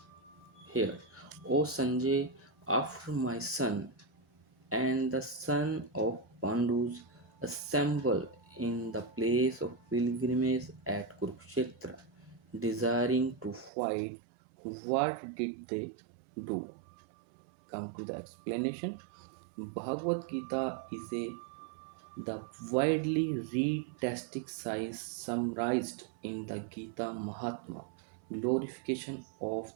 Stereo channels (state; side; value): drops out; left; at 13.7 s